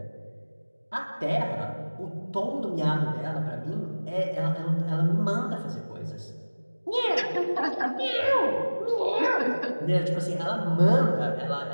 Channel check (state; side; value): inverted; both; correlation -1.00